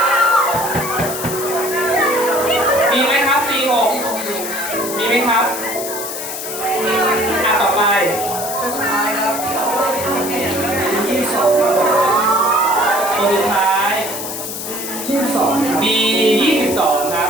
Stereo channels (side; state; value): left; noise; hiss, 7 dB below the sound